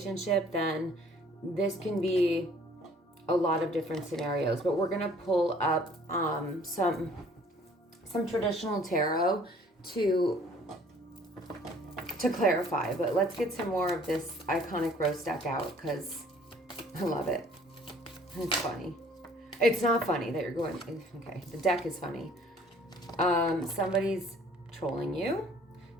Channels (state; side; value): normal; both; correlation 0.56